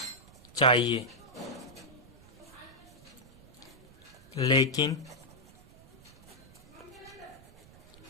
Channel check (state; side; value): noise; right; rumble, 23 dB below the sound